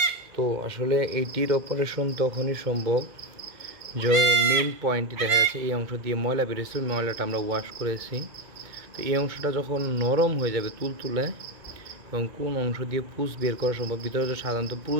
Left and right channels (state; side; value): late; left; 2.2 ms